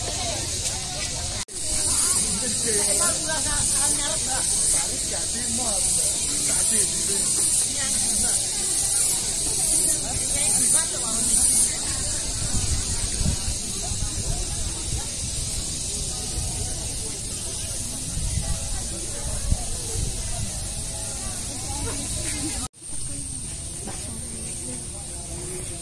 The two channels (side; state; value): both; identical; correlation 1.00